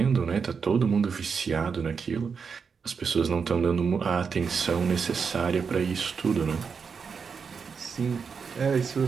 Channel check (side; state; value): left; quieter; 5.8 dB